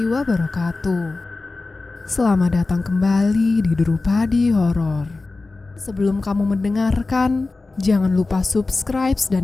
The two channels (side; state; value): right; quieter; 3.5 dB